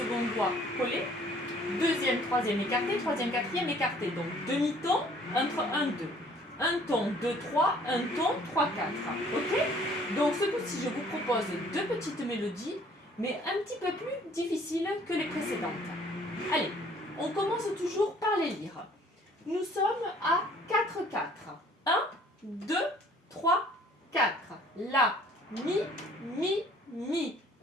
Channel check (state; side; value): normal; both; correlation 0.57